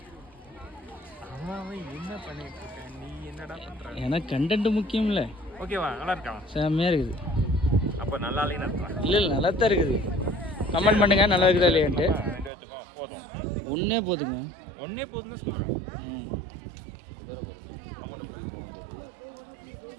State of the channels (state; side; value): drops out; left; at 12.5 s